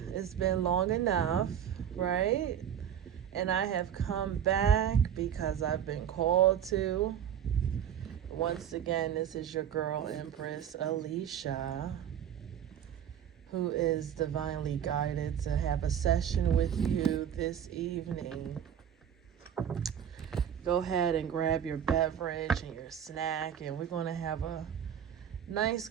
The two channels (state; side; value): quieter; left; 9.2 dB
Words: It's been long enough, right? And I have come back because I've been called to. Once again, this is your girl, Empress Alicia, who is divinely guided to have a session with you this evening. Go ahead and grab your beverage and your snack, and we're going to have a nice